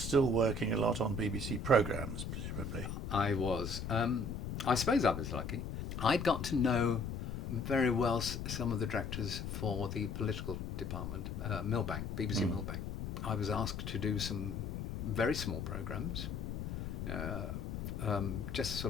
working a lot on BBC programmes, presumably. I was. I suppose I was lucky. I'd got to know very well some of the directors for the political department, Millbank, BBC Millbank. I was asked to do some very small programmes, just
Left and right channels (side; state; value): left; noise; rumble, 5 dB below the sound